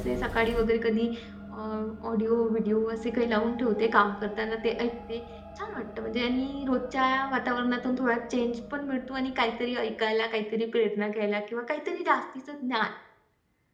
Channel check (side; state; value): both; identical; correlation 1.00